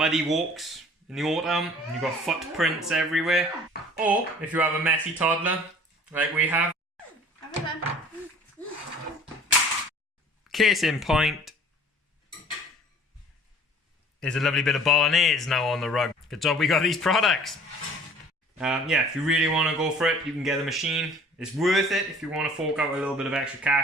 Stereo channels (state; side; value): normal; both; correlation 0.49